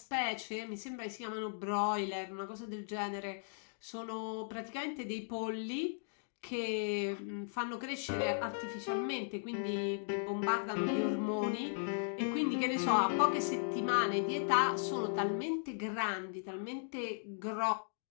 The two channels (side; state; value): right; silent; digital silence